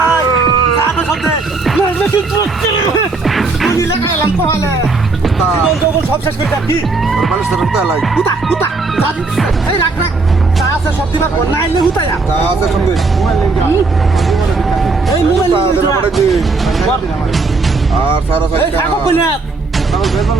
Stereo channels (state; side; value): quieter; left; 3.8 dB